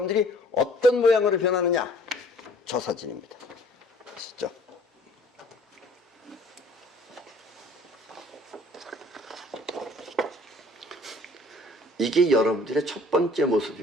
어떤 모양으로 변하느냐? 저 사진입니다. 아시죠? 이게 여러분들의 첫 번째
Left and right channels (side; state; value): both; normal; correlation 0.54